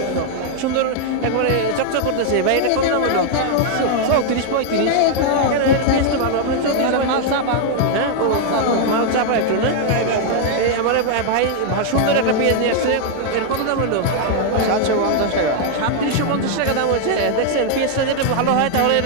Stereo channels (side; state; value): both; different; correlation 0.00